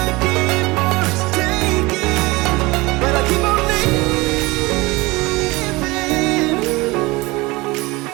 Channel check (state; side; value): quieter; left; 22.8 dB